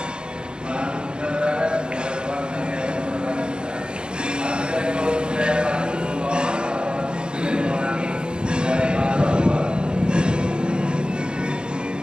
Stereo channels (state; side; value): late; left; 0.050 ms